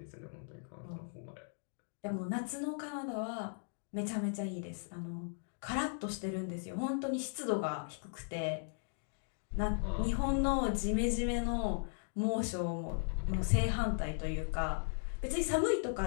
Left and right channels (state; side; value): silent; right; digital silence